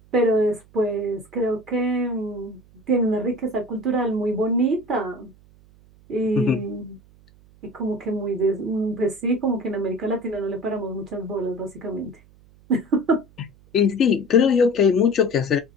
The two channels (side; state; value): right; noise; hum, 27 dB below the sound